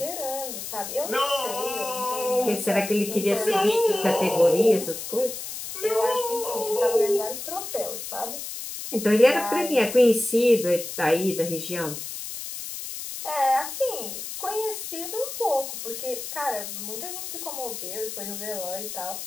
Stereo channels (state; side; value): noise; left; hiss, 8 dB below the sound